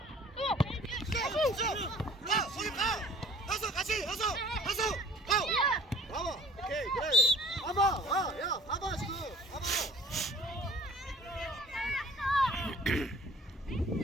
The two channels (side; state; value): both; normal; correlation 0.50